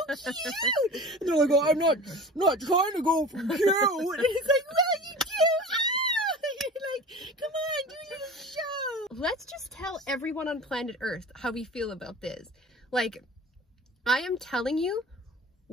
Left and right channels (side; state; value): both; normal; correlation 0.37